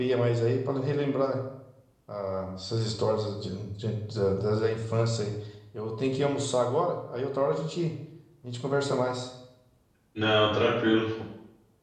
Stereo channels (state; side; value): identical; both; correlation 1.00